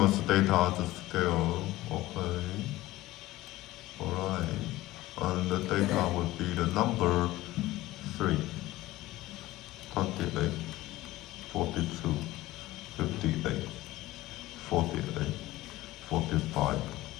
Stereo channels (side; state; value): right; quieter; 17.3 dB